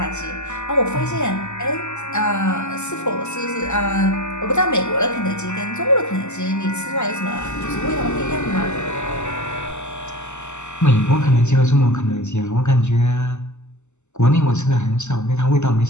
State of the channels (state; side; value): late; right; 0.83 ms